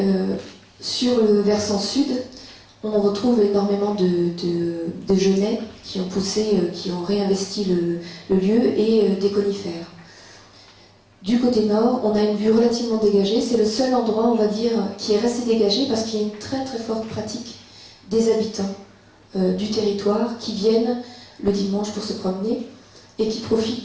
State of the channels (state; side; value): identical; both; correlation 1.00